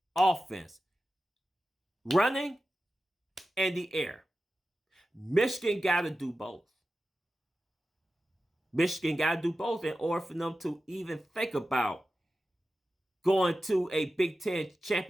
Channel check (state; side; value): normal; both; correlation 0.93